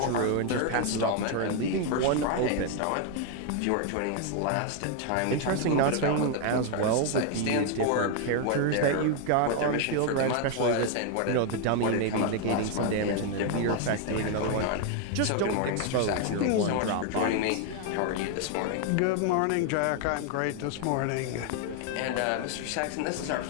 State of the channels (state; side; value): different; both; correlation 0.01